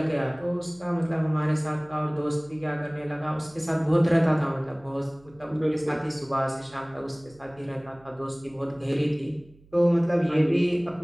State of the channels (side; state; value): right; noise; hum, 27 dB below the sound